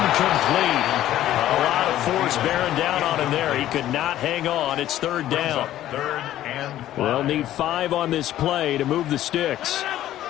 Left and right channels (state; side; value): quieter; right; 13.1 dB